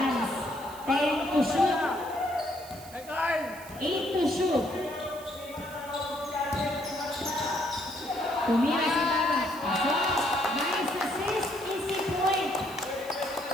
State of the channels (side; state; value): right; noise; hiss, 18 dB below the sound